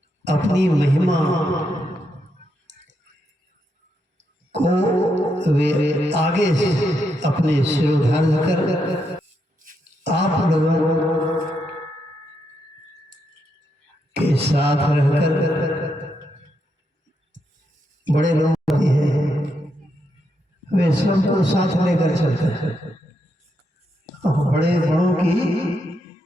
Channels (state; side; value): normal; both; correlation 0.81